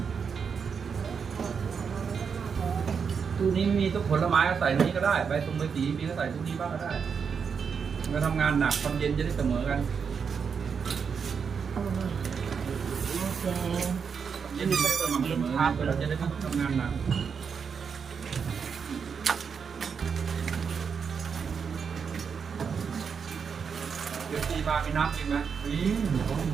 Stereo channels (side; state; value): left; quieter; 6.3 dB